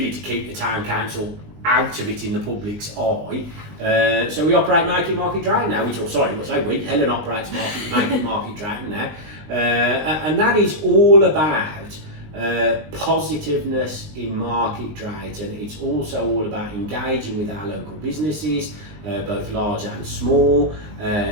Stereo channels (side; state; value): left; late; 20 ms